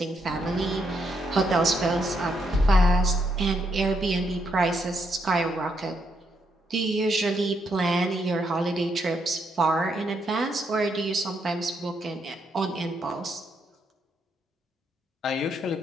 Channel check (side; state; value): both; normal; correlation 0.77